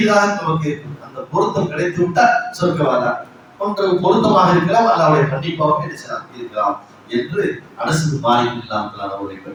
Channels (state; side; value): identical; both; correlation 1.00